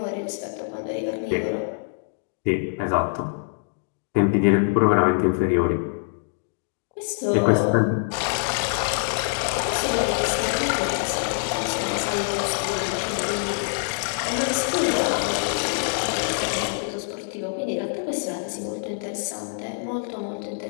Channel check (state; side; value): silent; right; digital silence